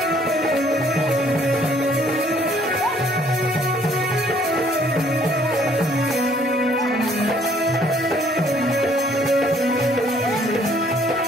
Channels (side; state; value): both; normal; correlation 0.62